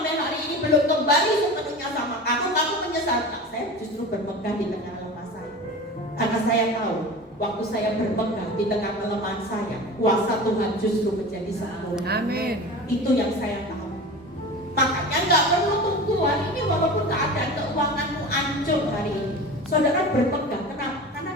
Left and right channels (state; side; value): normal; both; correlation 0.33